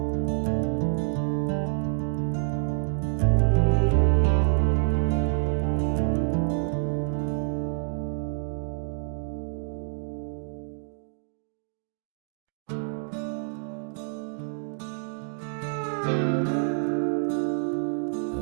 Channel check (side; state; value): left; silent; digital silence